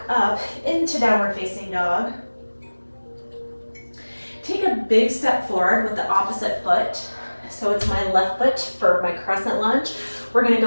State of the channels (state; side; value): inverted; both; correlation -1.00